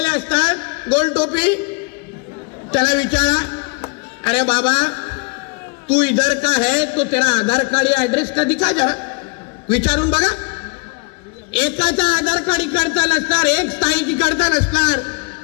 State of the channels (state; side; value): quieter; right; 32.5 dB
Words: असतात, गोल टोपी, त्याला विचारा, अरे बाबा तू इधर का है तो तेरा आधार कार्ड या एड्रेस का दिखा, जरा विचारून बघा. एकाचा आधार कार्ड इकडचा नसणार, एक स्थायीची इकडचा नसणार.